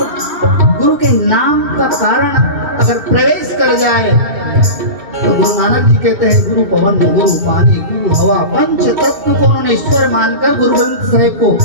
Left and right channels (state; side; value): late; left; 2.7 ms